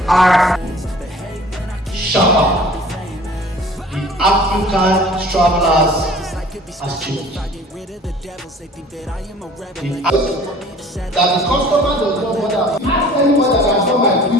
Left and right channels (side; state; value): both; normal; correlation 0.48